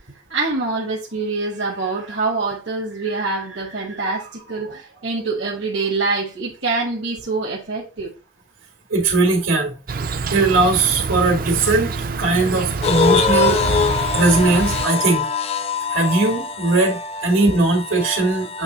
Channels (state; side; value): normal; both; correlation 0.33